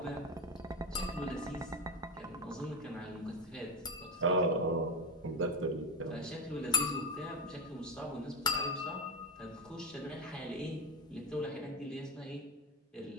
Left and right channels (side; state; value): both; normal; correlation 0.16